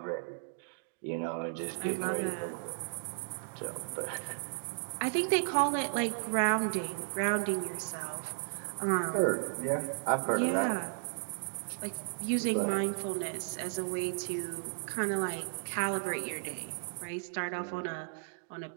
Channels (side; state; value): left; silent; digital silence